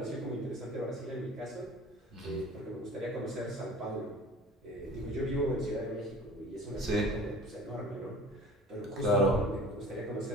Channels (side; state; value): both; normal; correlation 0.44